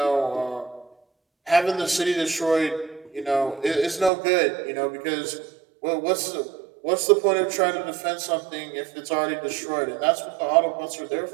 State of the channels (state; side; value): drops out; left; at 4.1 s